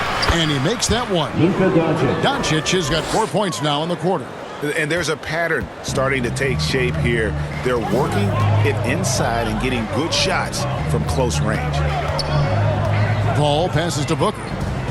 And he makes that one. Luka Doncic. Doncic has got 4 points now in the quarter. And there's a pattern starting to take shape here. They're working it inside and getting good shots from close range. Paul passes to Booker.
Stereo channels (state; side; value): identical; both; correlation 1.00